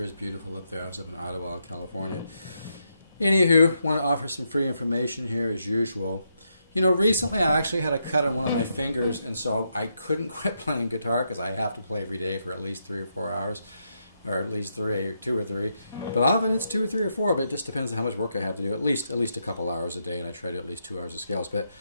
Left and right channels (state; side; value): inverted; both; correlation -0.81